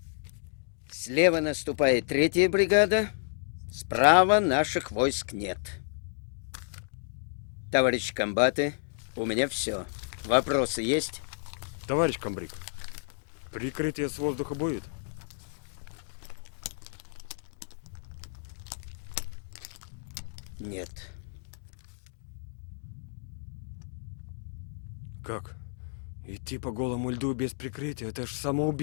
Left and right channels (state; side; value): silent; right; digital silence